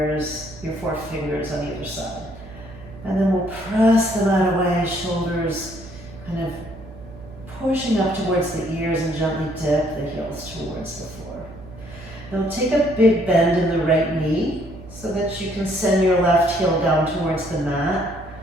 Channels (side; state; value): right; noise; hum, 17 dB below the sound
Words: on either side. And then we'll press them out away, shoulders kind of pushing up towards the ears and gently dip the heels towards the floor. Now take a big bend in the right knee so that you can send your left heel down towards the mat